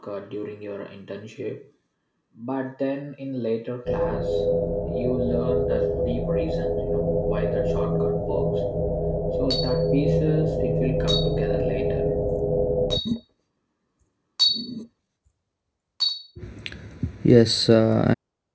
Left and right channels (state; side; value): identical; both; correlation 1.00